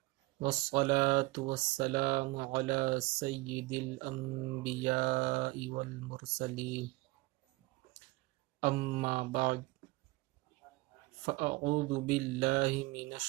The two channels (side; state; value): left; quieter; 22.1 dB